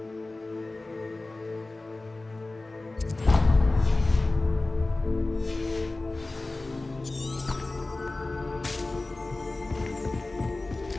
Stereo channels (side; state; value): right; quieter; 3.1 dB